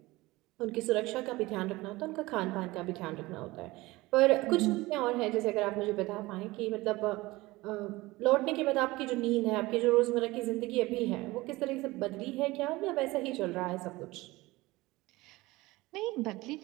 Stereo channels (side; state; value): left; quieter; 20.3 dB